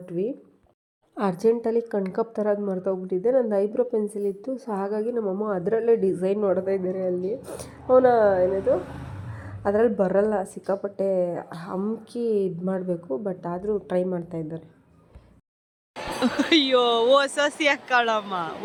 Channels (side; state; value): both; identical; correlation 1.00